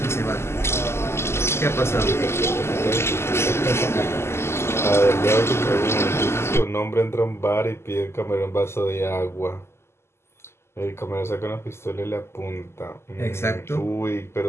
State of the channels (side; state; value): right; late; 0.12 ms